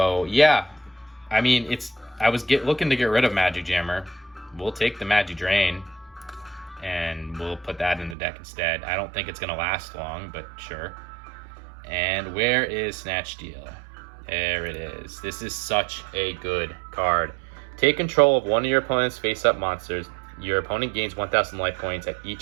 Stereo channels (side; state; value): left; drops out; at 8.2 s